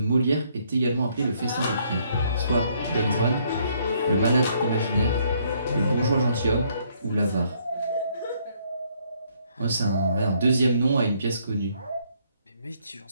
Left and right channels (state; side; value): inverted; both; correlation -0.68